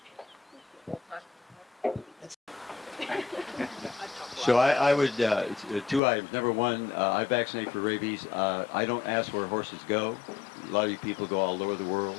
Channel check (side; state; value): right; drops out; at 6.0 s